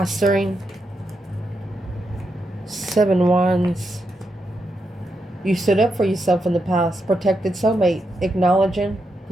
7 Wands. You stood up for yourself in the past. Protected soulmate. Acknowledging.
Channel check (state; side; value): normal; both; correlation 0.84